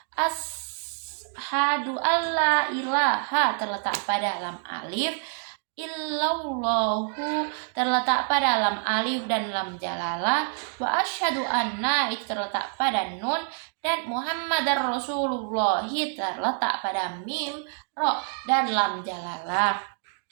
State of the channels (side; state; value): left; silent; 60 dB below the other